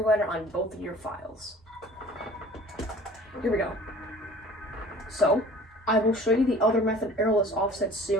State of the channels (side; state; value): both; normal; correlation 0.46